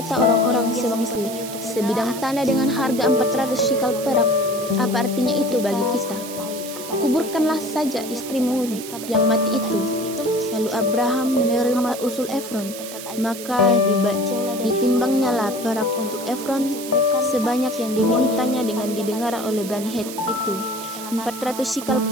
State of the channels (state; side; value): noise; right; hiss, 11 dB below the sound